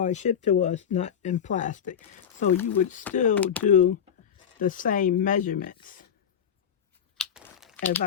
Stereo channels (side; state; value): right; quieter; 8.3 dB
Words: it's shipped to us not in plastic. So you would still do the same measurements as